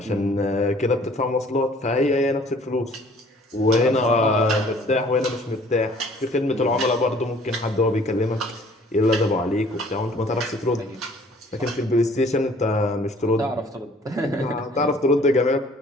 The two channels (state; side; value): normal; both; correlation 0.55